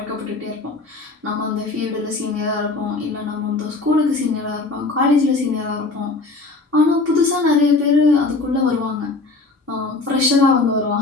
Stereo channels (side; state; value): right; quieter; 3.5 dB